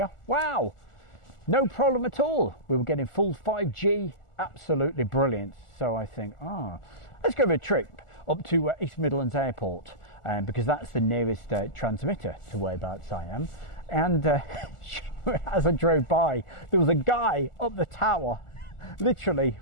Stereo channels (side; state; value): right; late; 1.4 ms